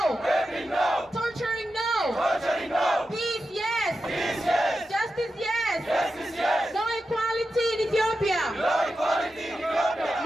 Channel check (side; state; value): both; normal; correlation 0.90